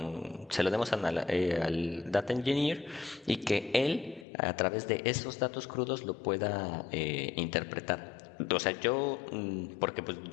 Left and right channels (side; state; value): right; drops out; at 4.2 s